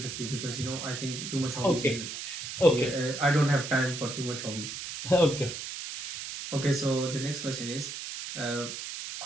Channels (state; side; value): noise; right; hiss, 7 dB below the sound